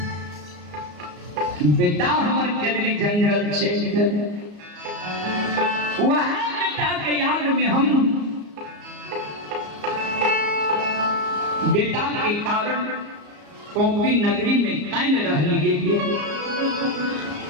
बेटा हमारे केदली जंगल छे वह बेटा के याद में हम बेटा के कारण कोपी नगरी में कैन रह लिए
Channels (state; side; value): late; left; 34 ms